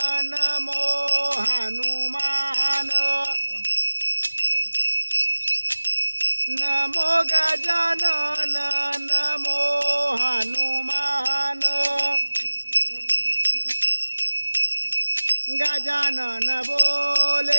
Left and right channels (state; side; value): inverted; both; correlation -1.00